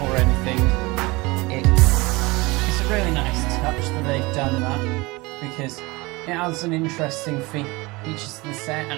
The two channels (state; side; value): quieter; left; 23.5 dB